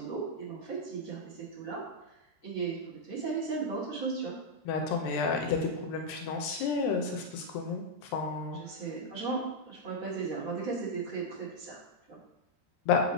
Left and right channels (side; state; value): right; late; 13 ms